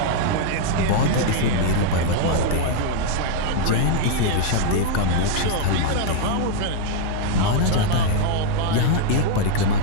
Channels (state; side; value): different; both; correlation -0.01